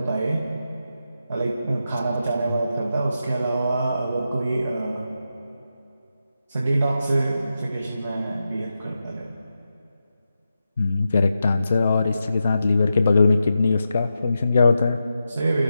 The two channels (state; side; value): inverted; both; correlation -0.89